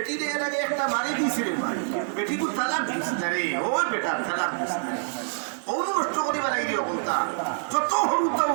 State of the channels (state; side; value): silent; left; 61 dB below the other